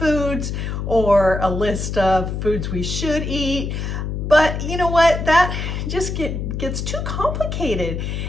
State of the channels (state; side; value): noise; left; hum, 3 dB below the sound